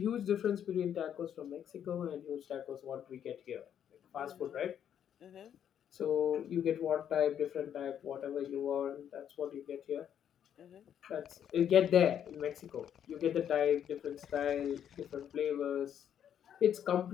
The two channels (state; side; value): quieter; right; 9.3 dB